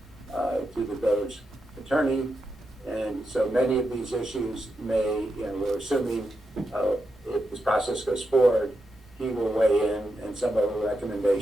to the village attorney. And so many of these issues may, we're assuming if this process goes forward, he will weigh in, and some of the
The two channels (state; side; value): normal; both; correlation 0.86